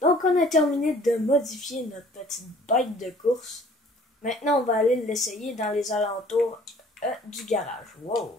Donc, on a terminé de modifier notre petite bête de course. Maintenant, on va aller l'essayer dans les alentours du garage. Wow.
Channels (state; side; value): normal; both; correlation 0.54